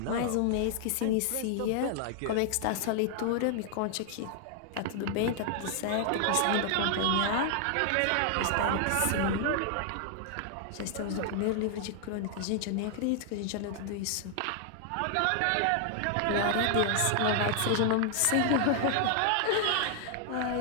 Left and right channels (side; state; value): both; different; correlation 0.00